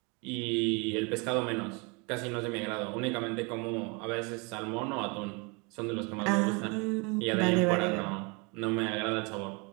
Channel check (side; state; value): left; quieter; 30.8 dB